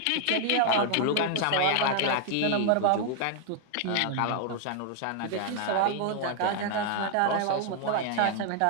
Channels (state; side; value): different; both; correlation 0.00